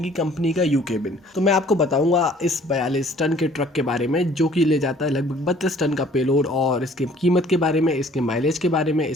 कि कंपनी का यू केबिन। तो मैं आपको बताऊंगा इस 42 टन के ट्रक के बारे में जो कि ले जाता है लगभग 32 टन का पेलोड, और इसकी कीमत के बारे में, इसके माइलेज के बारे में,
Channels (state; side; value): normal; both; correlation 0.55